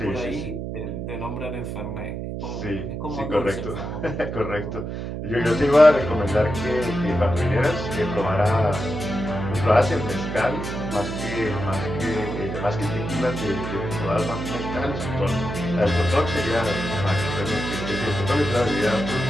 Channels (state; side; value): noise; right; hum, 5 dB below the sound